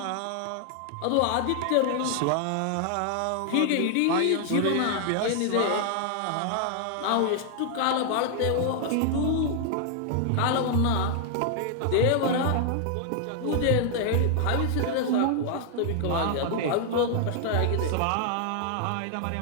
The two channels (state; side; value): different; both; correlation 0.00